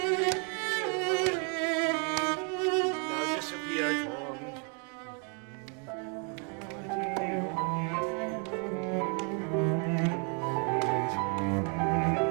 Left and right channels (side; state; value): left; quieter; 38.3 dB